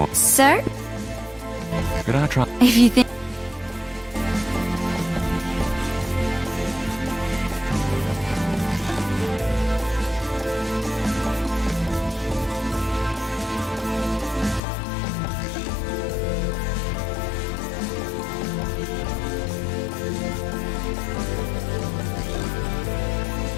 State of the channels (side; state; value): right; drops out; at 14.6 s